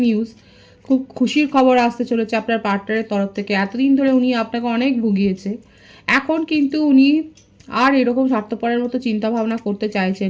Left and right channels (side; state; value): both; identical; correlation 1.00